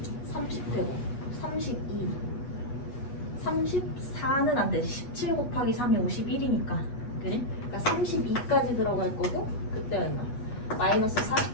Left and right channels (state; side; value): late; right; 8.2 ms